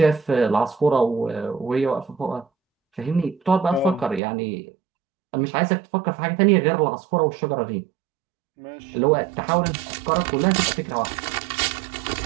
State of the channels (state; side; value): drops out; left; at 4.2 s